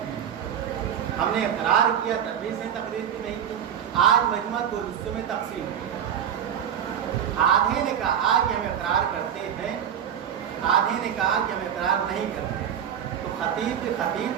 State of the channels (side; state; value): left; quieter; 9.1 dB